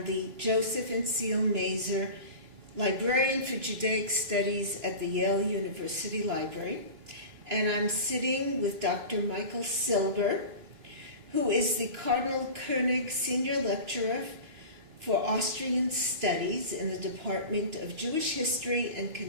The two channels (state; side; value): late; left; 2.9 ms